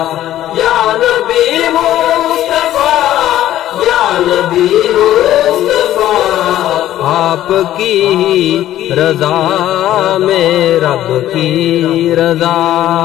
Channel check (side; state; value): right; quieter; 13.1 dB